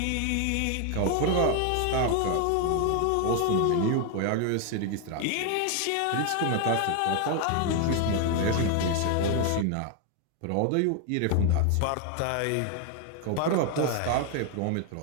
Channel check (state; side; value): different; both; correlation 0.01